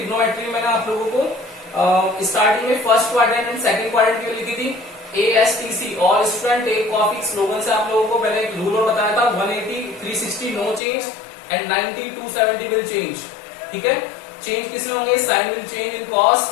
मैंने आप लोगों को स्टार्टिंग में first quadrant and second quadrant की लिखी थी, ASTC, all student take copy. Slogan से आप लोगों को मैंने एक रूल और बताया था, 180, 360 no change and 90, 270 will change, ठीक है। चेंज किसमें होंगे, sine will change in cos,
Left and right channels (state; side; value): drops out; right; at 10.8 s